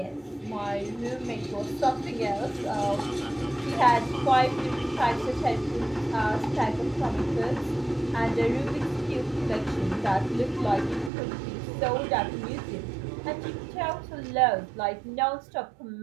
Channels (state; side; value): drops out; left; at 11.1 s